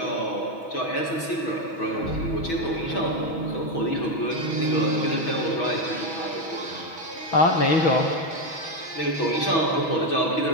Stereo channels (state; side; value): late; right; 6.2 ms